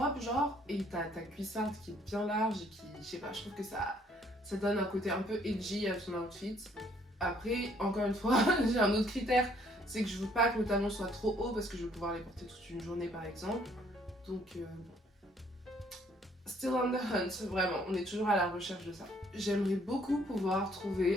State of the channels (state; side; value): normal; both; correlation 0.64